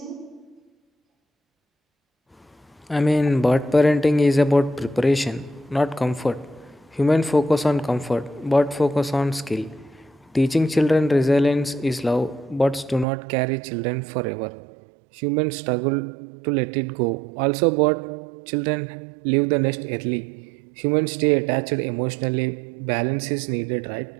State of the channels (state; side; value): drops out; left; at 13.1 s